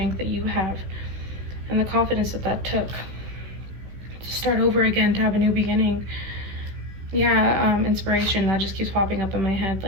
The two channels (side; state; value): left; late; 16 ms